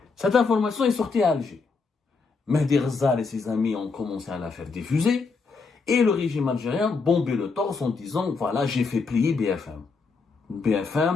Cette information est sortie à Alger. Mehdi Ghazal et ses amis ont commencé à la faire diffuser. Et le régime algérien bombait le torse en disant, voilà, j'ai fait plier BFM.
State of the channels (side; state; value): right; quieter; 4.5 dB